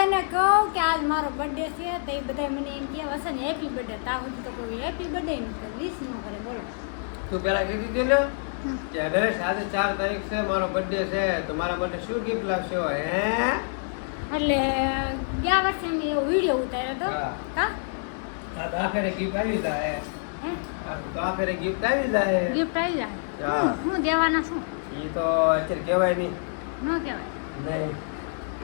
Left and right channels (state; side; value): silent; right; digital silence